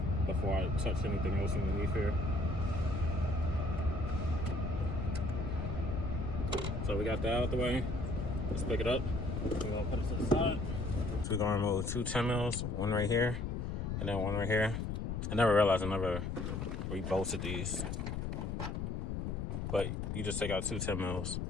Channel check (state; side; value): noise; left; rumble, 2 dB below the sound